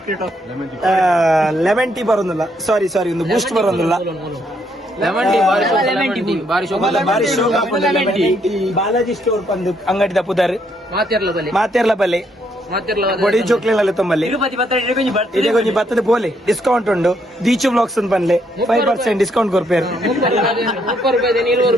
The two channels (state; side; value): normal; both; correlation 0.73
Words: ಲೆಮನ್ ಟೀ ಬರೋದಿಲ್ಲ ಸಾರಿ ಒಂದು ಬೂಸ್ಟ್ ಬರೋದಿಲ್ಲ ಬಾಲಾಜಿ ಸ್ಟೋರ್ ಬಂದು ಅಂಗಡಿದ ಪುದರ್ ಮಾತೆರ್ಲ ಬಲೆ ಬೊಡಿ ಚೋಕ್ಲೆಲ್ಲ ತುಂಬಲ್ಲಿ ಇದೇ ಕೊಂಚ ಬತ್ತದ ಪೋಲೆ ಡಿಸ್ಕೌಂಟ್ ಉಂಡು ದೀಚು ಬ್ಲಾಗ್ಸ್ ಅಂತ ಬಂದ್ಲೆ 5% ಡಿಸ್ಕೌಂಟ್ ಕೊರ್ಪೇರು